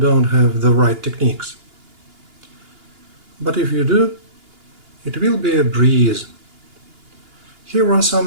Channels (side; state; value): left; late; 2.8 ms